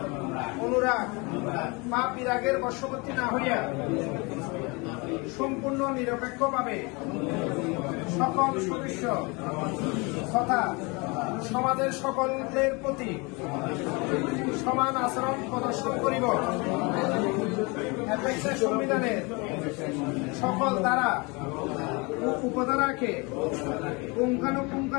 অনুরাগ বা বিরাগের বশবর্তী না হইয়া সম্পূর্ণ নিরপেক্ষভাবে সকল সদস্য তথা সমাজের সকলের প্রতি সমান আচরণ প্রদর্শন করিব। অ্যাপেক্সের সংবিধানের সকল ধারা ও উপধারাকে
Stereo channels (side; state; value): right; quieter; 28.1 dB